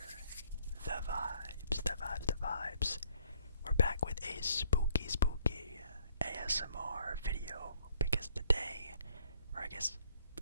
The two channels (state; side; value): inverted; both; correlation -0.64